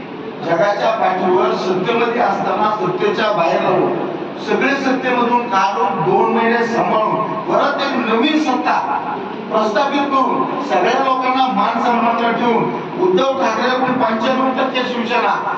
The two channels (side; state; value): both; identical; correlation 1.00